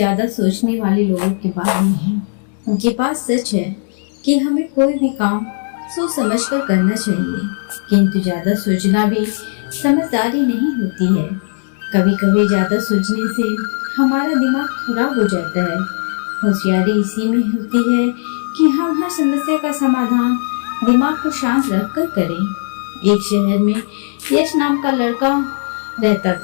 सोचने वाले लोगों के बारे में है। उनके पास सच है कि हमें कोई भी काम सोच समझ कर करना चाहिए, किंतु ज़्यादा सोचना भी समझदारी नहीं होती है। कभी कभी ज़्यादा सोचने से हमारा दिमाग खराब हो जाता है। होशियारी इसी में होती है कि हम हर समस्या का समाधान दिमाग को शांत रख कर करें। एक शहर में यश नाम का लड़का रहता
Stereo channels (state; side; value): silent; right; digital silence